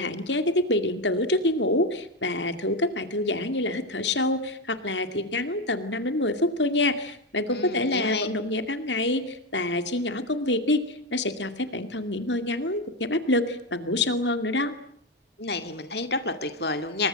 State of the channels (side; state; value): both; normal; correlation 0.12